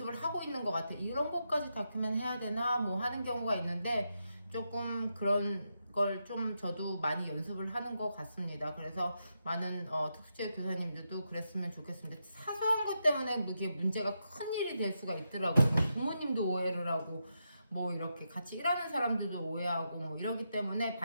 하고 있는 것 같아요. 이런 것까지 다큐멘 해야 되나 뭐 하는 경우가 있는데 조금 그런 걸 좀 저도 많이 연습을 하는 것 같습니다. 그래서 많은 특수체 교사님들도 그랬으면 좋겠습니다. 사소한 것 때문에 이게 문제가 큰 일이 될 수가 있더라고요. 부모님도 오해를 하고 뭐 이렇게 같이 일하는 사람들도 오해하고 뭐 이러기 때문에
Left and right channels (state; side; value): inverted; both; correlation -0.85